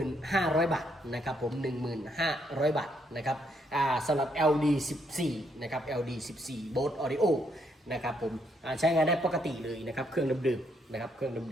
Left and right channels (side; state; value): both; normal; correlation 0.73